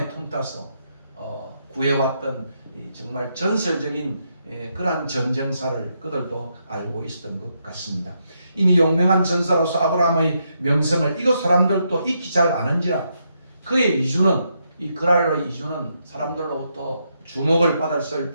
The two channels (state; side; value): inverted; both; correlation -0.80